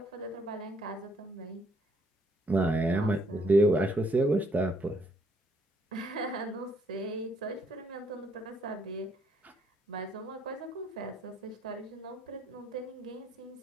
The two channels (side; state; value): both; normal; correlation 0.69